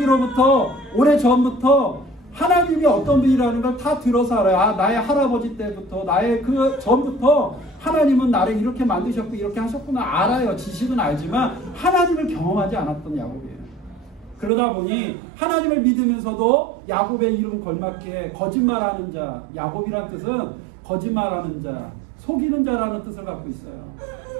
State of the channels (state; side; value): drops out; left; at 14.5 s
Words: 오래전부터 하나님이 어떤 분이라는 걸 다 들어서 알아요. 나의 할아버지 때부터 나의 그 전부터 하나님은 나를 이렇게 만드셨고 이렇게 하셨구나 알아요. 지식은 알지만 하나님을 경험하지 않았던 야곱이에요. 그러다 보니 하나님을 믿으면서도 야곱의 이름 걸맞게 거짓말하는 자, 야곱이란 뜻은 거짓말하는 자, 속이는 자라는 뜻을 갖고 있어요.